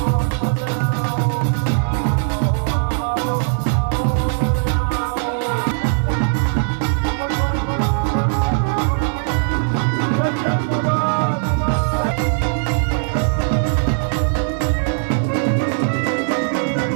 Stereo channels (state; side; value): silent; left; digital silence